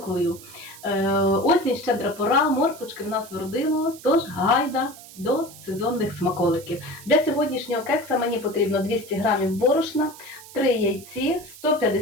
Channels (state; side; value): noise; right; hiss, 18 dB below the sound